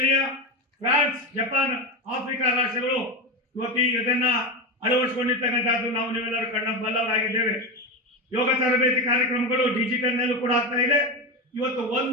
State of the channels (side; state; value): both; normal; correlation 0.17